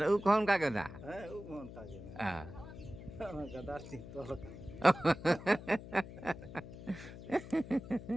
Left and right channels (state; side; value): noise; left; hum, 13 dB below the sound